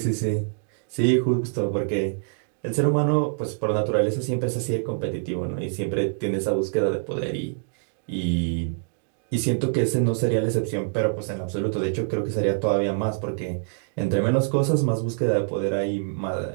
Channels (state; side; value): silent; left; digital silence